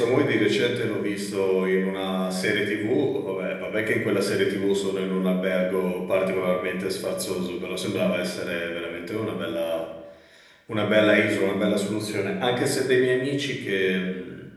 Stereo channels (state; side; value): identical; both; correlation 1.00